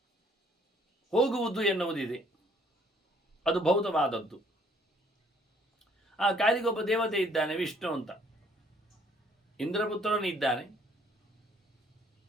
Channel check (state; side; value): normal; both; correlation 0.62